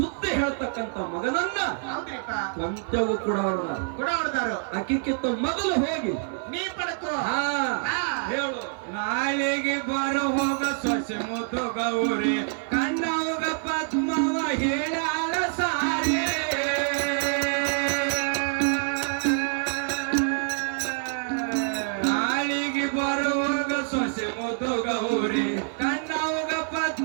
ಹೇಳ್ತಕ್ಕಂತ ಮಗನನ್ನ ಹೌದ್ರಿಪ್ಪ ಕೊಂತೆವು ಕೊಡವರದ ಕೊಡವದಾರು ಅಕ್ಕಿಕ್ಕಿಂತ ಮೊದಲು ಹೋಗಿ ನೀ ಪಡಕೋ ಹಾ ಹಾ ಹೇಳು ನಾಳೆಗೆ ಬರ ಹೋಗ ಸೊಸೆ ಮುದ್ದು ಗೌರಿ ಕಣ್ಣವುಗ ಪದ್ಮವ ಹೇಳ್ಯಾಳ ಸಾರಿ ನಾಳಿಗೆ ಬರುವಾಗ ಸೊಸೆ ಮುದ್ದು ಗೌರಿ ಕಣ್ಣವುಗ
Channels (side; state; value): left; silent; 58 dB below the other